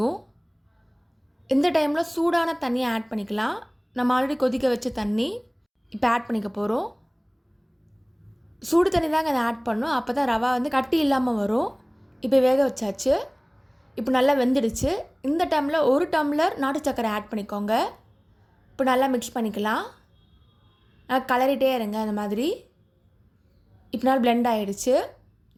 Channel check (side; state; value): both; identical; correlation 1.00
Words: இந்த டைமில் சூடான தண்ணியை ஆட் பண்ணிக்கலாம். நம்ம ஆல்ரெடி கொதிக்க வச்ச தண்ணி இப்போ ஆட் பண்ணிக்க போகிறோம். சூடு தண்ணி தாங்க அதை ஆட் பண்ணணும், அப்போ தான் ரவா கட்டி இல்லாமல் வரும். இப்போ வேக வச்சாச்சு. இப்போ நல்லா வெந்துடுச்சு. இந்த டைமில் 1 டம்ளர் நாட்டு சர்க்கரை ஆட் பண்ணிக்கோங்க. இப்போ நல்லா மிக்ஸ் பண்ணிக்கலாம். நல்லா கலரிட்டே இருங்க அந்த மாதிரி. இப்போ நல்லா பிளெண்ட் ஆகிடுச்சு,